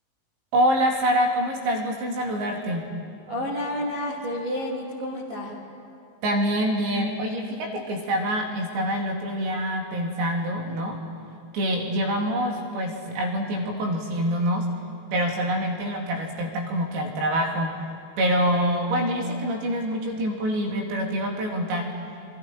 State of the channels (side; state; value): left; late; 19 ms